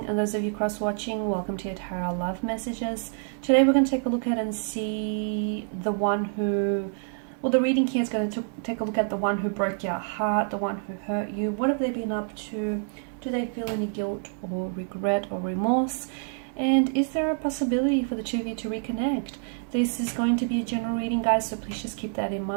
and those of you cross-watching, welcome to your Tarot Love Messages. Today we're going to take a look at and see the one who, well, the reading here is going to take a look at the one who broke your heart, the one who hurt you. What have they been up to? Do they feel any guilt or regret or remorse? And is there a possibility for the two of you to reconnect? This is going to be a general reading, guys, so please just keep that in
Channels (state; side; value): silent; left; 60 dB below the other